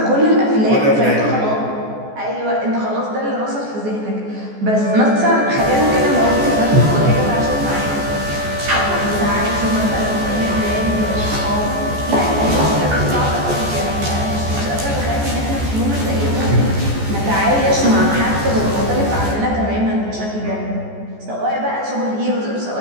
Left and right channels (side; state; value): left; late; 14 ms